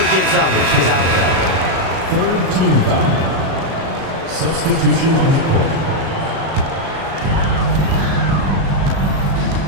gives up when she's out there. Third team foul. Substitution on the court.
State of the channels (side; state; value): left; late; 37 ms